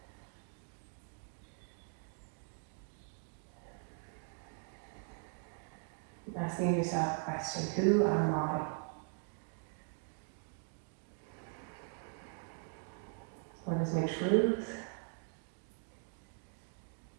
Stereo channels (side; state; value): left; silent; 51 dB below the other